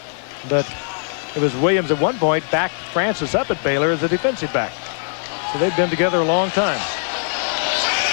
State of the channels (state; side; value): silent; right; digital silence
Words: But it was Williams at one point backed Francis up at Baylor as a defensive back. So they've been together a long time.